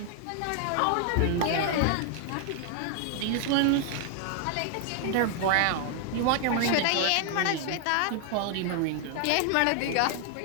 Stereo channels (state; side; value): different; both; correlation 0.00